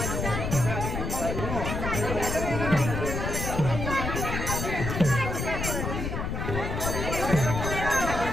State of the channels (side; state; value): left; noise; rumble, 3 dB below the sound